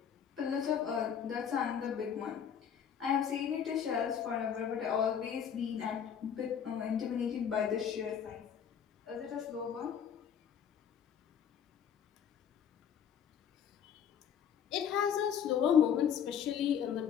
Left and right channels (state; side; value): quieter; right; 8.1 dB